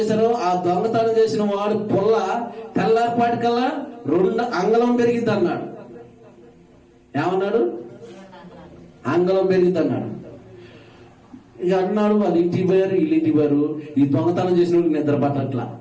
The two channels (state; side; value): identical; both; correlation 1.00